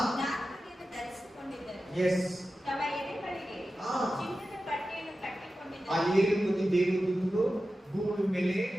ಧರಿಸಿಕೊಂಡಿದ್ದರು. ಎಸ್. ತಮ್ಮ ಎದೆಗಳಿಗೆ ಚಿನ್ನದ ಪಟ್ಟಿಯನ್ನು ಕಟ್ಟಿಕೊಂಡಿದ್ದರು. ಆ 7 ಮಂದಿ ದೇವದೂತರು ಭೂಮಿ ಮೇಲೆ,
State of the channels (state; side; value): normal; both; correlation 0.93